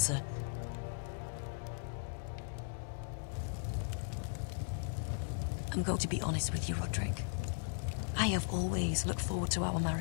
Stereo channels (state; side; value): silent; right; digital silence